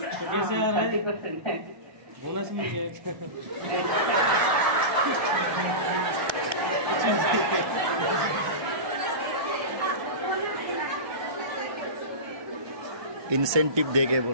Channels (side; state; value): left; late; 1.2 ms